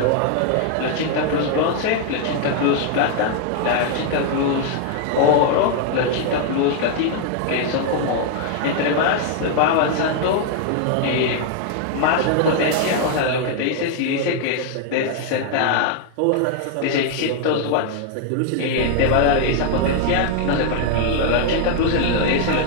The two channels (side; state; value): both; different; correlation 0.00